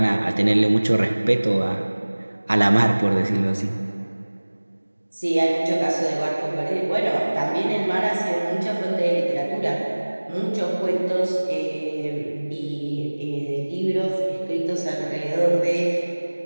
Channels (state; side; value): inverted; both; correlation -1.00